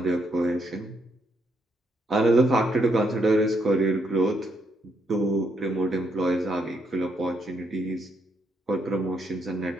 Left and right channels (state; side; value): normal; both; correlation 0.75